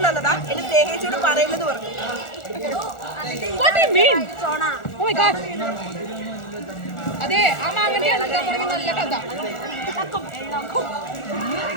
തന്നതാ. എന്റെ സ്നേഹിച്ചോട് പറയുന്നത് പറഞ്ഞു. What do you mean? Oh my God. അതെ ആ മാങ്ങന്റെ നല്ല കഥ.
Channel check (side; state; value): right; late; 1.4 ms